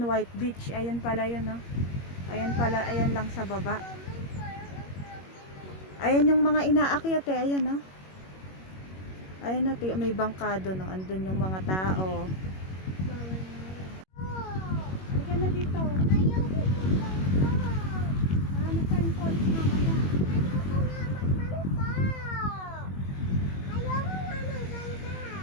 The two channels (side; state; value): right; late; 21 ms